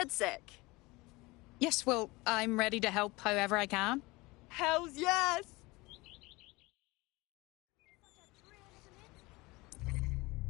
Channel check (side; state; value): right; quieter; 22.7 dB